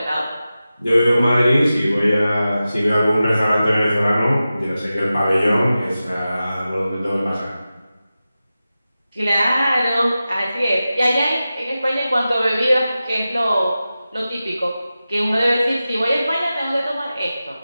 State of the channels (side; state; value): both; inverted; correlation -0.94